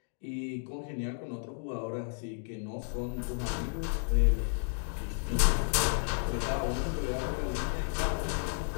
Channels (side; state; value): right; silent; digital silence